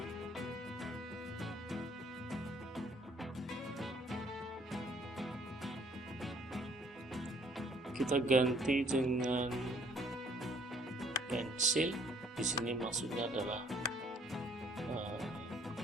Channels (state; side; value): normal; both; correlation 0.61